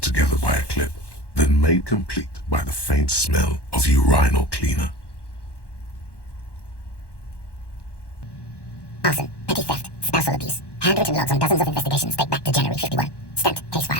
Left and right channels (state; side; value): late; right; 1.1 ms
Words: together by a clip, then made complete by the faint smell of urinal cleaner. Arson, petty theft, spousal abuse. Handwritten logs on dozens of investigations date back to January 51. Stamped case